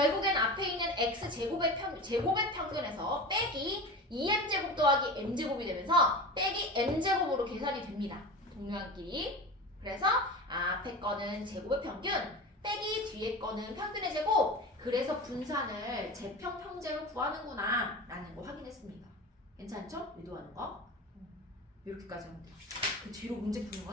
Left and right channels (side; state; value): both; normal; correlation 0.29